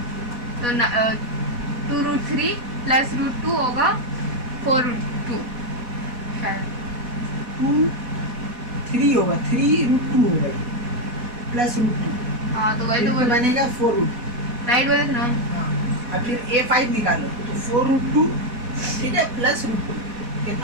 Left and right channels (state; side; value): late; left; 4.1 ms